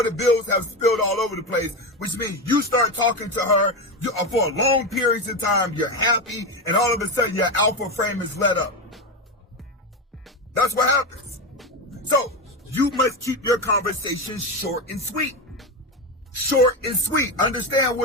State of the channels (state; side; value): normal; both; correlation 0.15